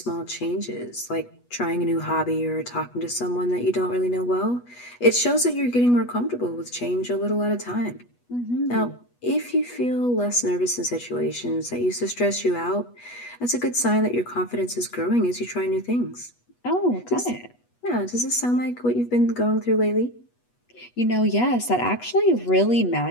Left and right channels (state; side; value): late; right; 8.2 ms